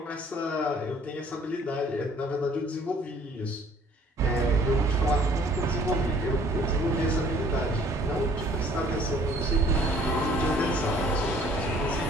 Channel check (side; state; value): both; normal; correlation 0.57